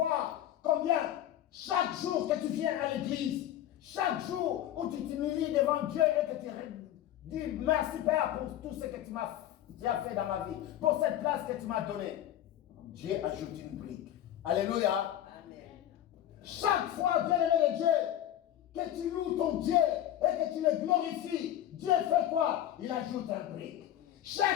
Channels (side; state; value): right; quieter; 12.0 dB